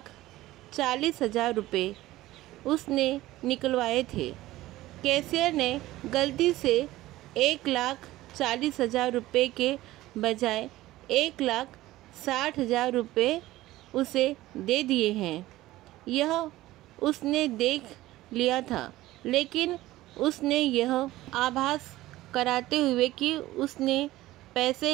रुपये उसने निकलवाए थे। कैशियर ने गलती से 1,40,000 रुपये के बजाय 1,60,000 रुपये उसे दे दिए हैं। यह उसने देख लिया था, लेकिन उसने यह आभास कराते हुए कि उसने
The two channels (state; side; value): quieter; left; 16.7 dB